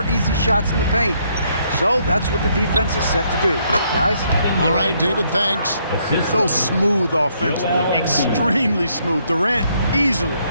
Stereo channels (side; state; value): both; inverted; correlation -0.71